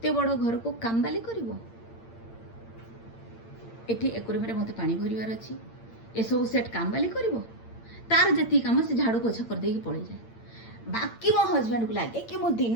बड़ घर को काम बाली करिवो एठी एकुरे मेरे मते पानी भरिवार अछि ए सब सेट काम बाली करिवो तार जति काम से झाड़ू पोछा कर देकी पड़े जाए बाकी मो हस्बैंड को लगे कि मो दिन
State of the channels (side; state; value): right; late; 8.8 ms